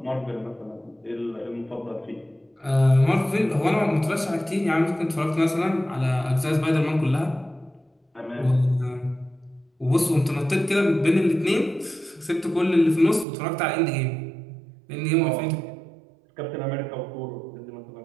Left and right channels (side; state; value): left; drops out; at 13.2 s